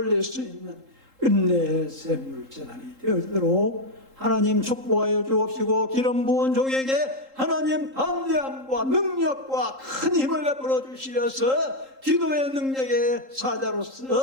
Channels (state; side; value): late; left; 3.8 ms